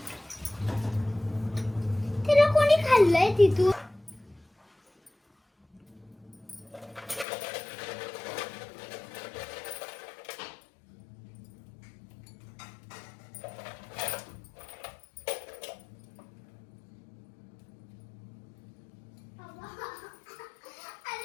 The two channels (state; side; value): drops out; right; at 7.2 s